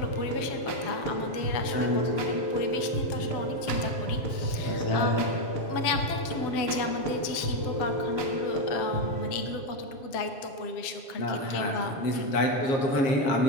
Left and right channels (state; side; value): late; right; 7.2 ms